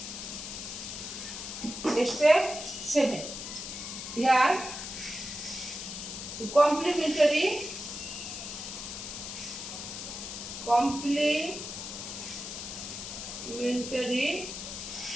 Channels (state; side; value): noise; left; hiss, 7 dB below the sound